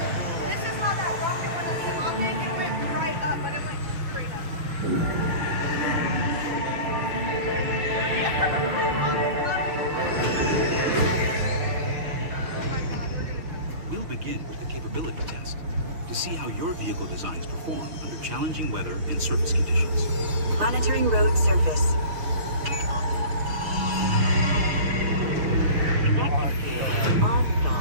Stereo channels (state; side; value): late; left; 6.6 ms